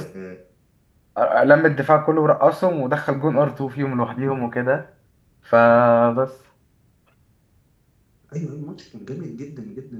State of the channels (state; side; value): identical; both; correlation 1.00